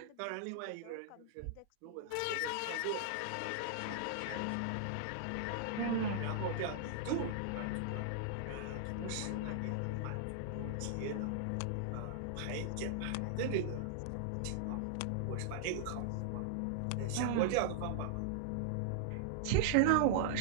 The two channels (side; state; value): both; different; correlation -0.01